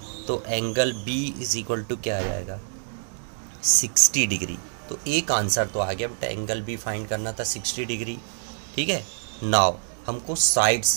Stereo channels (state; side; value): silent; left; digital silence